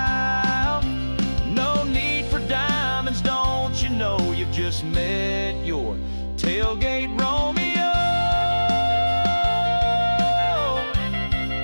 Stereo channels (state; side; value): inverted; both; correlation -1.00